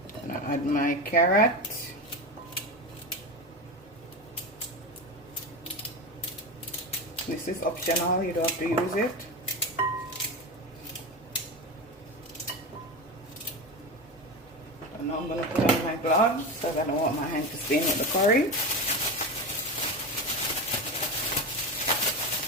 I'm gonna add my carrot. This is optional, you don't have to use it. And now I'm gonna put on my gloves because I don't want my hand to stain with the curry.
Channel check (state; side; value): normal; both; correlation 0.21